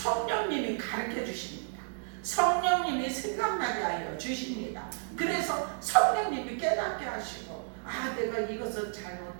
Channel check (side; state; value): left; silent; 57 dB below the other